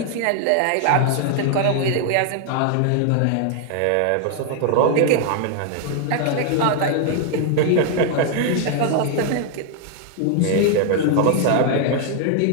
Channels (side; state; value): both; different; correlation 0.00